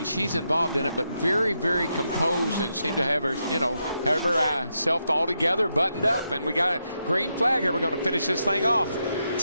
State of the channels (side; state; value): both; inverted; correlation -0.83